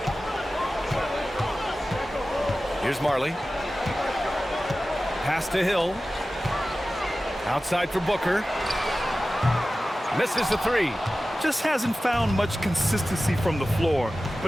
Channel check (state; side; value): normal; both; correlation 0.95